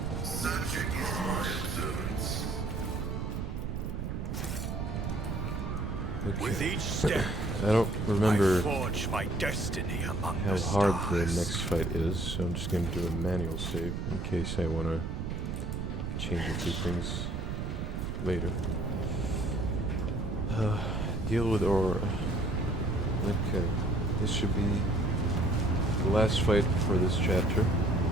Searching is my observance. Okay. With each step, I don't remember I forge my destiny among how the hard stars. the next fight is, so I'm just going to do a manual save in case I want to change a few things later. Deal with aura. Okay, this should be the last fight for this chapter.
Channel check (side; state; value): right; noise; rumble, 3 dB below the sound